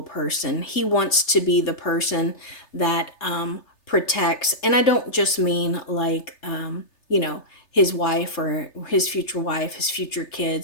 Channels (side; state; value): right; late; 3.3 ms